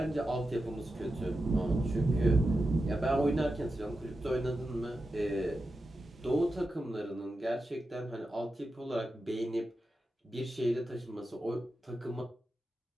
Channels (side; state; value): both; normal; correlation 0.90